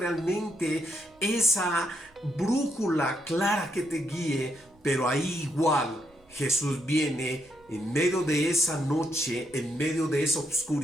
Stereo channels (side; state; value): right; noise; rumble, 30 dB below the sound